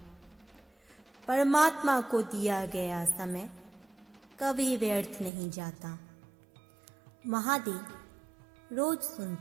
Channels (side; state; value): left; drops out; at 5.3 s